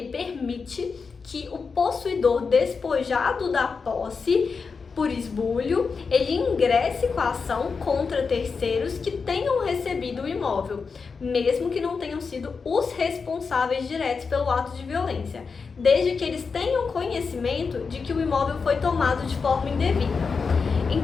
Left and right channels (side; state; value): right; quieter; 5.1 dB